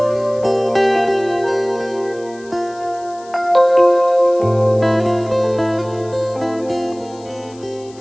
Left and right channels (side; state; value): left; noise; hiss, 25 dB below the sound